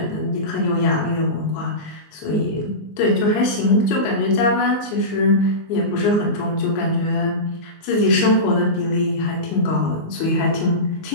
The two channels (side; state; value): right; late; 19 ms